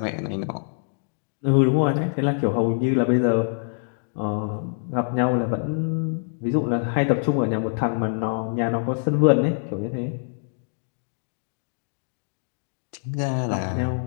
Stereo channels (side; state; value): right; silent; digital silence